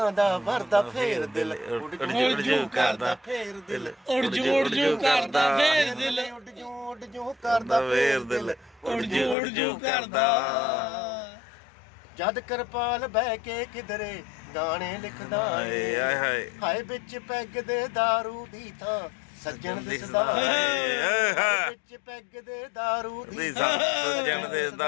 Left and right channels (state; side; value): drops out; right; at 9.3 s